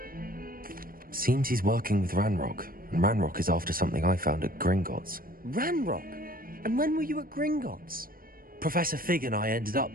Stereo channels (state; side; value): late; left; 0.42 ms